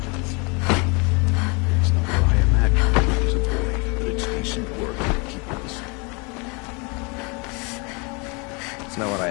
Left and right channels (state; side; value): quieter; right; 31.0 dB